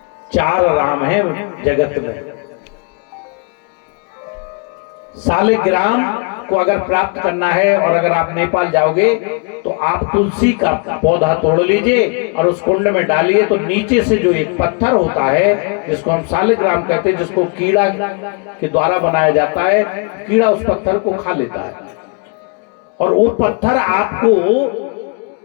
4 राम है जगत में। सालिग्राम को अगर प्राप्त करना है, और अगर आप नेपाल जाओगे तो आप तुलसी का पौधा तोड़ लीजिए और उस कुंड में डालिए, तो नीचे से जो एक पत्थर होता है जिसको हम सालिग्राम कहते हैं, जिसको कीड़ा के द्वारा बनाया जाता है, कीड़ा उस पत्थर को खा लेता है और वो पत्थर आपको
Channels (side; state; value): right; quieter; 34.8 dB